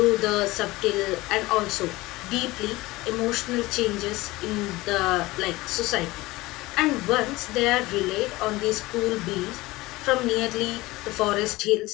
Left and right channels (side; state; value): right; quieter; 20.0 dB